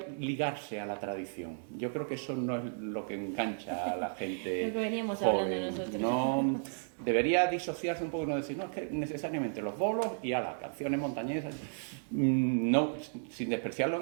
ligarse a la tradición. Yo creo que eso no es lo que engancha a la gente joven. No, debería disociarse un poco, no decir, no, es que necesariamente los bolos y a las canciones montañesas, no, sin despreciarlo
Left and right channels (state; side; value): silent; left; digital silence